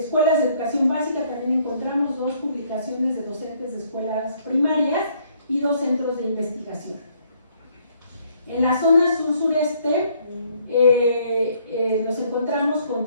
de educación básica, también encontramos 2 publicaciones de docentes de escuelas primarias y 2 centros de investigación. En la zona sur-sureste nos encontramos con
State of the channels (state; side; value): inverted; both; correlation -0.65